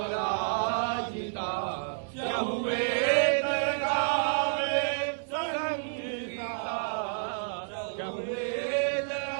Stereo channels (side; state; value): left; silent; digital silence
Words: चहुवेद गावे संगीता चहुवेद